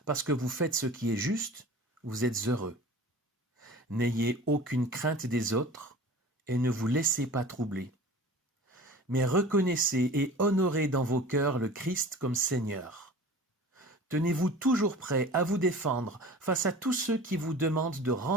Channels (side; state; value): both; normal; correlation 0.40